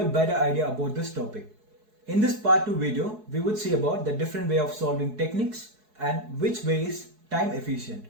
a better idea about this topic. In this part 2 video, we would see about the different way of solving techniques and which way is time efficient.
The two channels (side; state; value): left; late; 4.7 ms